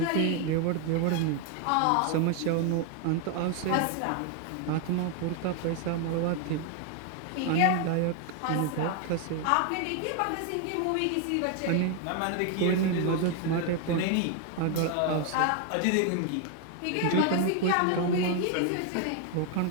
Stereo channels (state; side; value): different; both; correlation 0.01